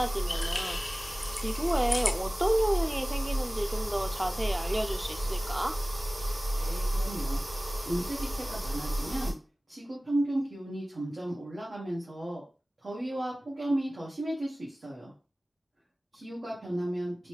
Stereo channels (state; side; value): normal; both; correlation 0.98